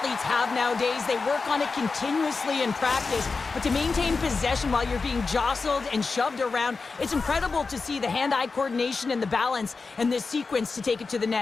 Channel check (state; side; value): quieter; right; 4.3 dB